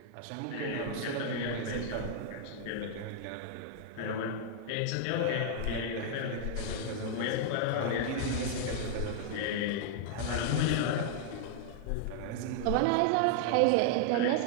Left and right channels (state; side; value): different; both; correlation -0.01